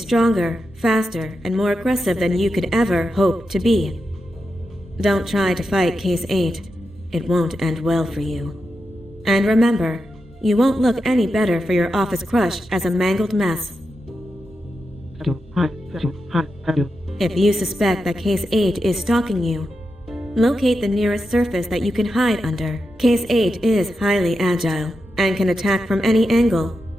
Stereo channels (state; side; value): normal; both; correlation 0.88